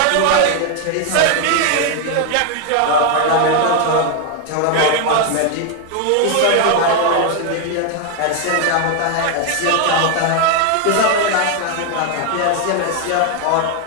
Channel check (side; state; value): both; different; correlation 0.01